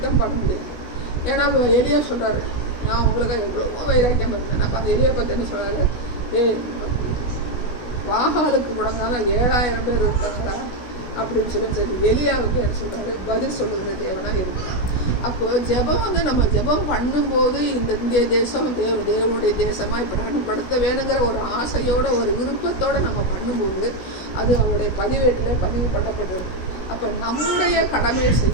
பண்ண முடியாது. ஏன்னா எலியா சொல்கிறாரு, நான் உங்களுக்கு எவ்வளவோ வைராக்கியம் இருந்தேன். அப்போ அந்த எலியை பற்றி என்ன சொல்கிறாரு, வாகாலுக்கு முடங்காத 7000 பேர் இருக்காங்களா அப்படின்னு சொல்லி எலியாவுக்கு என்ன சொல்கிறாரு, பதில் சொல்லுகிற தேவனாக இருக்கிறார். அப்போது ஜெபம் வந்து நம்ம ஜெபம் பண்ணும்போது இந்த இந்திய தேசம் தேவனுடைய தேசமாக பிரகடனப்படுத்த வேணுங்கிற ஒரு ஆசையோட ஒரு விருப்பத்தோடு நம்ம பண்ணும்போது அது அவருடைய பதிவேட்டில் பதிவு பண்ணப்பட்டிருக்கு. அப்போ நம்முடைய கடமையை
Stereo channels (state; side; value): late; right; 16 ms